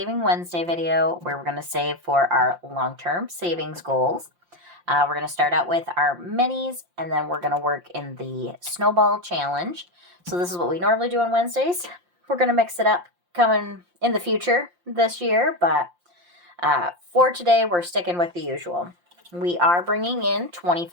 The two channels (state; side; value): late; left; 5.7 ms